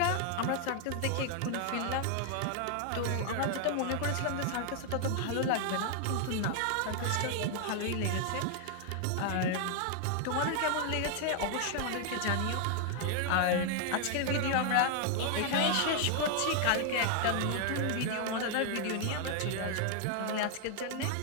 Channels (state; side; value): different; both; correlation 0.00